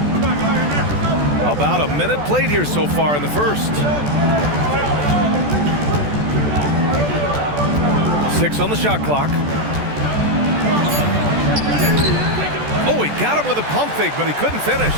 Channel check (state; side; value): late; left; 14 ms